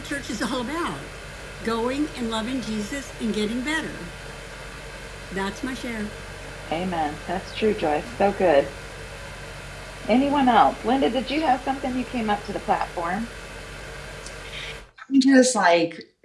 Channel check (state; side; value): identical; both; correlation 1.00